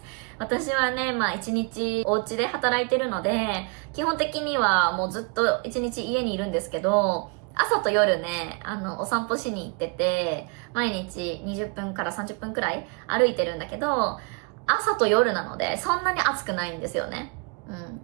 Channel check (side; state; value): left; quieter; 33.3 dB